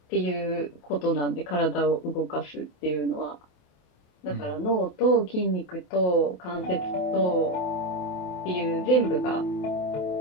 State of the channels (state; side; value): late; right; 28 ms